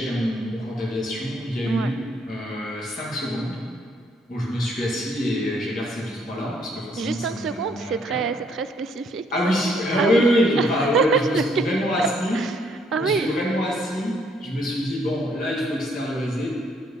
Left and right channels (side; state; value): both; normal; correlation 0.68